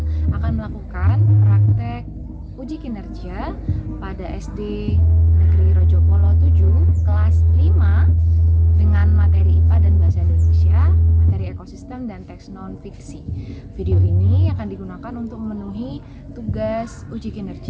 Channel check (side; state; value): both; identical; correlation 1.00